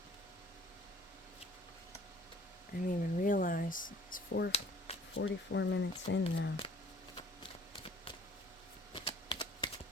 I didn't even realize it's 44 minutes in now.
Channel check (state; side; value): normal; both; correlation 0.53